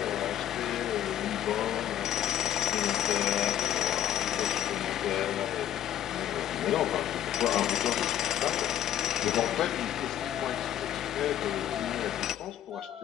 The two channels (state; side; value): quieter; right; 11.3 dB